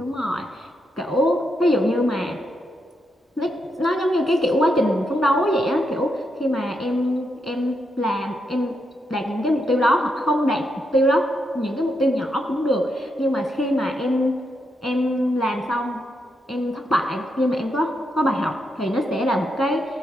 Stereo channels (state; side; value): normal; both; correlation 0.82